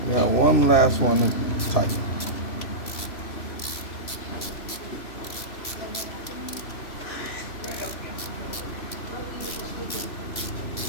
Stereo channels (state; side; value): late; right; 3.0 ms